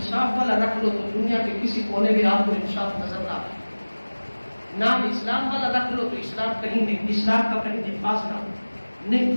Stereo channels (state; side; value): inverted; both; correlation -1.00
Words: والا رکھ لو تو دنیا کے کسی کونے میں آپ کو انصاف نظر نہ آئے، نام اسلام والا رکھ لو تو اسلام کہیں نہیں، اسلام کا کہیں نفاذ نہ ہو، نہیں،